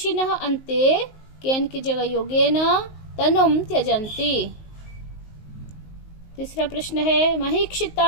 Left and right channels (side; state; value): right; late; 19 ms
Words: अन्ते केन की जगह योगेन तनुम त्यजन्ति। तीसरा प्रश्न है,